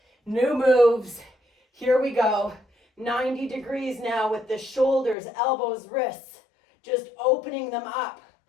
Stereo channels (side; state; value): right; drops out; at 5.2 s